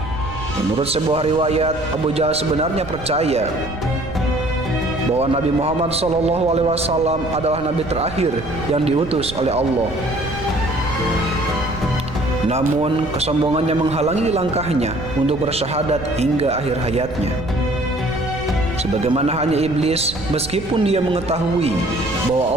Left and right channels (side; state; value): right; noise; rumble, 13 dB below the sound